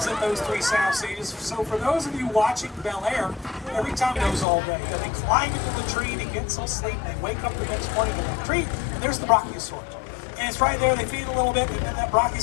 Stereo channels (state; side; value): drops out; right; at 4.5 s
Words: in those 3 sound stages. So for those of you watching Bel-Air, every time it goes all day, they climb into the tree to get some sleep. They wake up the next morning in the tree, and there's the Brachiosaurus. And it's right there, they feed a little bit, and then that